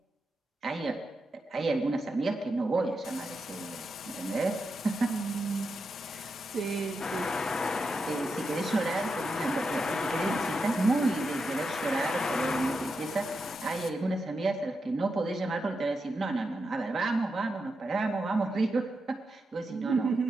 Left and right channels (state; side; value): normal; both; correlation 0.86